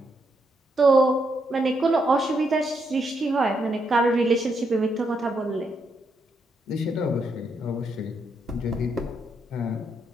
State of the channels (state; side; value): normal; both; correlation 0.78